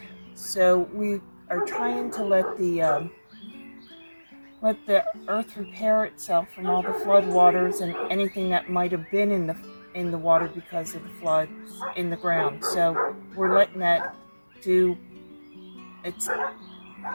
So we are trying to let the earth repair itself from all the flood waters and anything that might have been in the water because of the floods in the ground. So we're letting that do its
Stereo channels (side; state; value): both; inverted; correlation -1.00